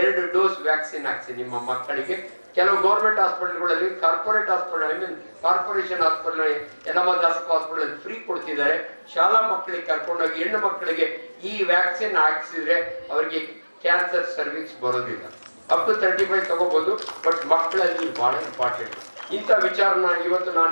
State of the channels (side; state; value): both; inverted; correlation -1.00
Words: ಡೋಸ್ ವ್ಯಾಕ್ಸಿನ್ ಹಾಕ್ಸಿ ನಿಮ್ಮ ಮಕ್ಕಳಿಗೆ. ಕೆಲವು ಗೌರ್ಮೆಂಟ್ ಹಾಸ್ಪಿಟಲ್ಗಳಲ್ಲಿ, ಕಾರ್ಪೊರೇಟ್ ಹಾಸ್ಪಿಟಲ್, ಕಾರ್ಪೊರೇಷನ್ ಹಾಸ್ಪಿಟಲ್, ಯಲಮ ದಾಸಪ್ಪ ಹಾಸ್ಪಿಟಲ್ ಫ್ರೀ ಕೊಡ್ತಿದ್ದಾರೆ. ಶಾಲಾ ಮಕ್ಕಳಿಗೆ ಕರ್ಕೊಂಡೋಗಿ ಹೆಣ್ಣು ಮಕ್ಕಳಿಗೆ ಈ ವ್ಯಾಕ್ಸಿನ್ ಹಾಕ್ಸಿದ್ರೆ ಅವರಿಗೆ ಕ್ಯಾನ್ಸರ್ ಸರ್ವಿಸ್ ಬರೋದಿಲ್ಲ. ಅಪ್ ಟು 35 ತಗೋಬಹುದು, ಬಟ್ ಮಕ್ಕಳಲ್ಲಿ ಬಹಳ ಇಂಪಾರ್ಟೆಂಟ್. ಇಂಥ ವಿಚಾರನ ಇವತ್ತು